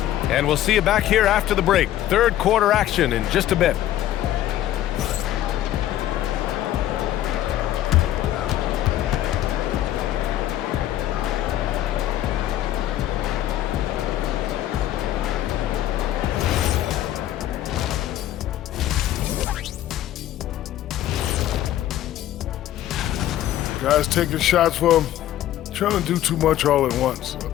And we'll see you back here after the break. Third quarter action in just a bit. Guys taking shots, well, trying to do too much all at once. I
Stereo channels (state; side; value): quieter; right; 12.8 dB